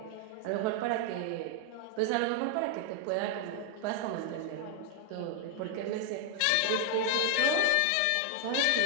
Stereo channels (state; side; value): different; both; correlation 0.00